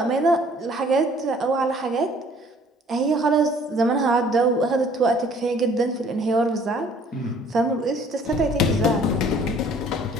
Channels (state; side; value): normal; both; correlation 0.56